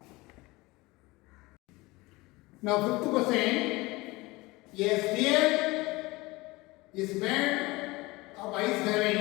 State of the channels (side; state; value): right; quieter; 22.0 dB